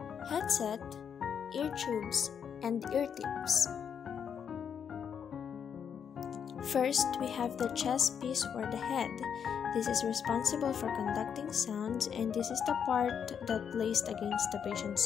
headset, ear tubes, and ear tips. First, we have the chest piece or the head. This is responsible for conducting sounds, and this is the part that placed against the patient's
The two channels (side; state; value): right; quieter; 7.6 dB